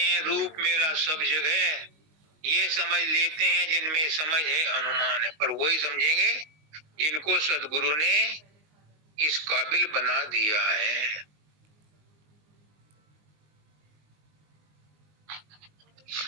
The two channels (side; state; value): left; late; 20 ms